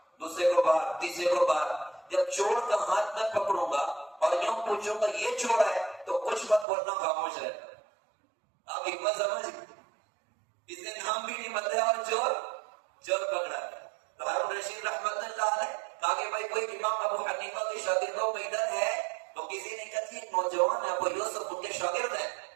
دوسرے کو باہر، تیسرے کو باہر۔ جب چور کا ہاتھ میں پکڑوں گا اور یوں پوچھوں گا یہ چور ہے تو کچھ مت بولنا، خاموش رہنا۔ آپ حکمت سمجھ، اس نے نام بھی نہیں بتایا اور چور پکڑا۔ تو ہارون رشید رحمت اللہ علیہ کہا کہ بھائی کوئی امام ابو حنیفہ کے شاگردوں میں ادھر ہے؟ تو کسی نے کہا ایک نوجوان ہے ابو یوسف، ان کے شاگرد ہیں،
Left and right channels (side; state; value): left; drops out; at 6.7 s